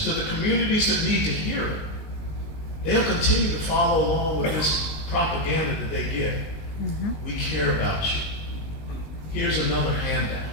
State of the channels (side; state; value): right; late; 19 ms